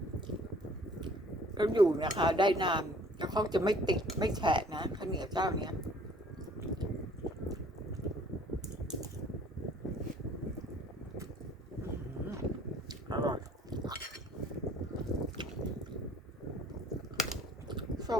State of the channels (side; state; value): both; normal; correlation 0.55